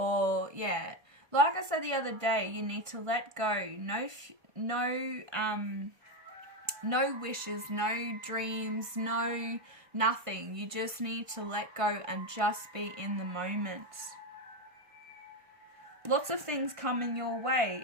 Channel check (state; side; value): late; left; 1.5 ms